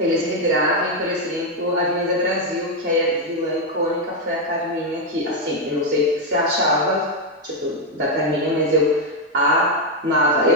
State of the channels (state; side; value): normal; both; correlation 0.03